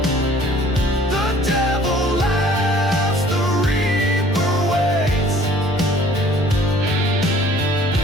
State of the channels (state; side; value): normal; both; correlation 0.53